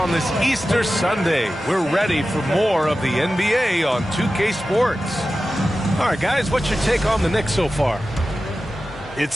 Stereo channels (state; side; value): normal; both; correlation 0.94